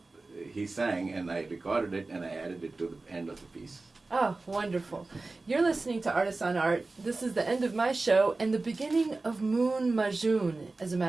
he sang, and I recorded it and I added it to the end of the piece. Oh, wonderful. You're listening to Artists on Art. This is the end of my show and the beginning of Moon Majoon. As a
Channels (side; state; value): left; quieter; 3.4 dB